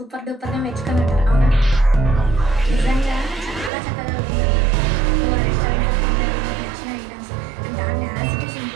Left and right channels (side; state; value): left; drops out; at 3.7 s